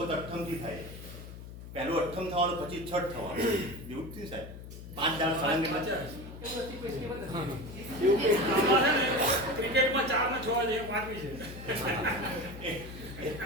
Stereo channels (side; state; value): left; noise; hum, 13 dB below the sound